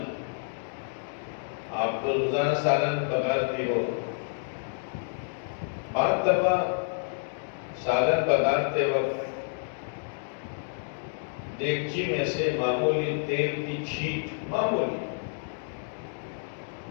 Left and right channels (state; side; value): silent; right; digital silence